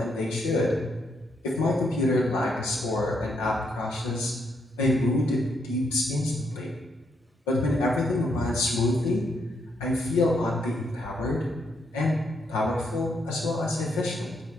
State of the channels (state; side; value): normal; both; correlation 0.76